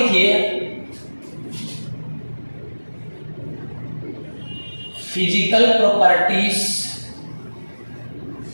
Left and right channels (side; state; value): both; inverted; correlation -1.00